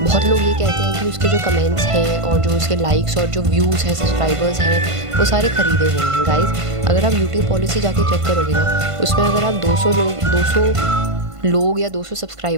लोग ये कहते हैं कि उसके जो कमेंट्स हैं और जो उसके लाइक्स और जो व्यूज़ हैं, सब्सक्राइबर्स हैं, वो सारे ख़रीदे हुए हैं। गाइज़, अगर आप यूट्यूब पॉलिसी जाके चेक करोगे ना, उसमें अगर आप 200 लोग या 200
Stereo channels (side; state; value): left; late; 1.5 ms